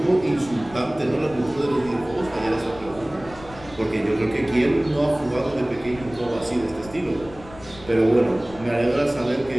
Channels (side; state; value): left; noise; rumble, 18 dB below the sound